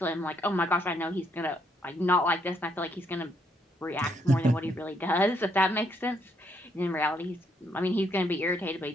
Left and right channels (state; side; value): normal; both; correlation 0.73